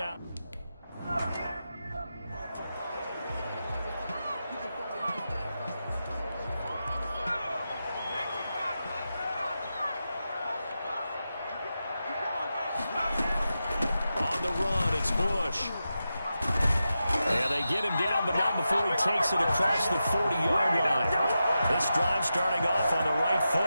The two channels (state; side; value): inverted; both; correlation -0.90